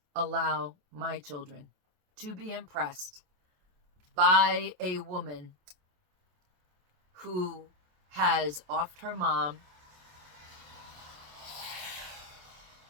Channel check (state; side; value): late; left; 27 ms